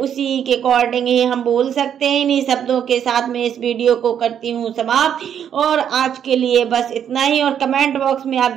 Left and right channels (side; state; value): left; quieter; 8.9 dB